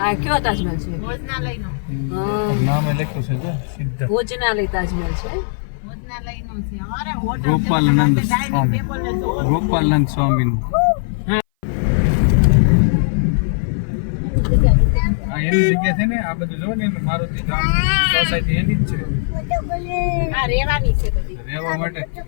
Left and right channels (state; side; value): silent; right; 60 dB below the other